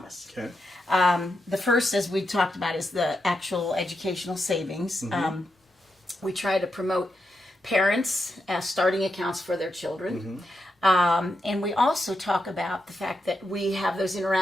Okay. The first, as we talked about, is the actual educational savings. We try to promote parents starting accounts for their children. And we also talk about the fact that we have those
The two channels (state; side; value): normal; both; correlation 0.85